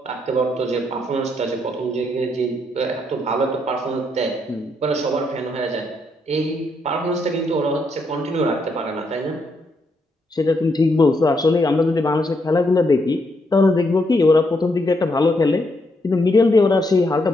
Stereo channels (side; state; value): both; normal; correlation 0.77